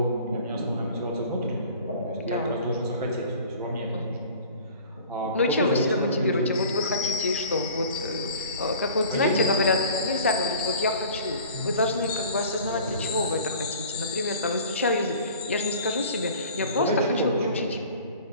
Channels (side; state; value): both; inverted; correlation -0.45